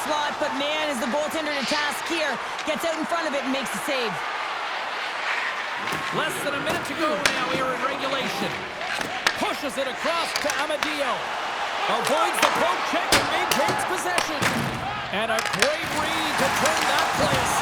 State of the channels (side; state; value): both; identical; correlation 1.00